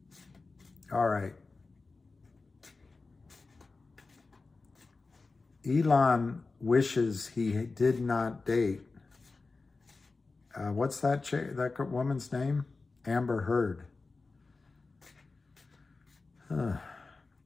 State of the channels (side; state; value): right; quieter; 3.9 dB